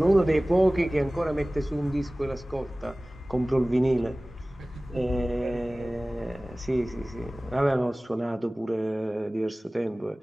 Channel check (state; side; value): normal; both; correlation 0.98